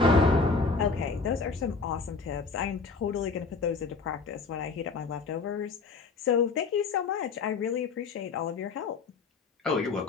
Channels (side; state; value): right; quieter; 4.5 dB